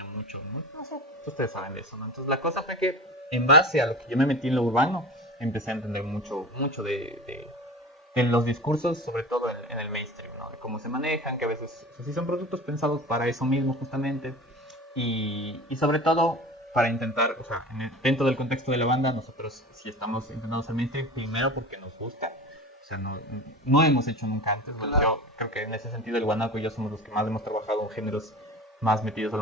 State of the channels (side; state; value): both; normal; correlation 0.34